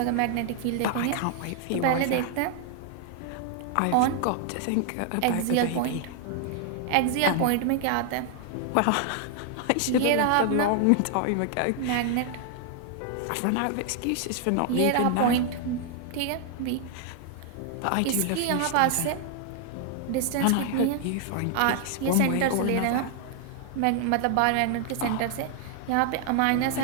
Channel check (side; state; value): both; different; correlation 0.00